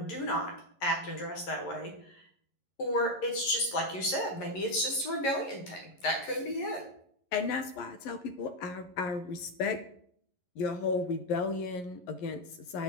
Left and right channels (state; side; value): late; right; 11 ms